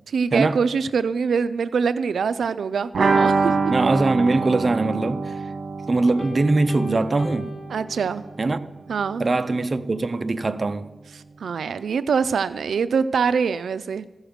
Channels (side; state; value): left; quieter; 3.7 dB